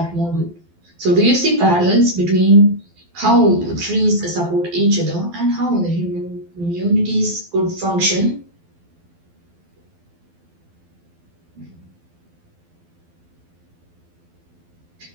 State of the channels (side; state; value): left; late; 12 ms